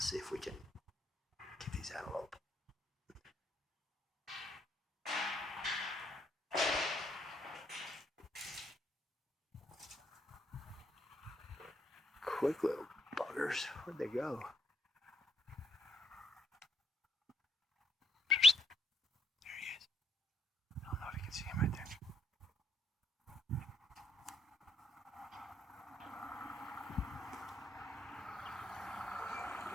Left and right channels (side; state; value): both; normal; correlation 0.73